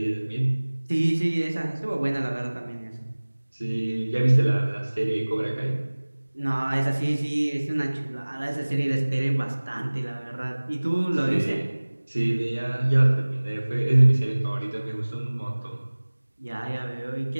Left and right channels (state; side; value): inverted; both; correlation -1.00